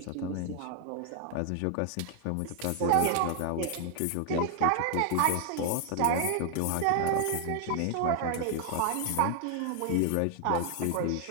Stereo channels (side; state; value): both; different; correlation 0.00